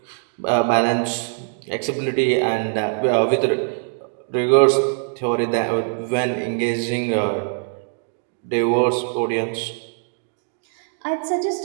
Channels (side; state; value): left; silent; digital silence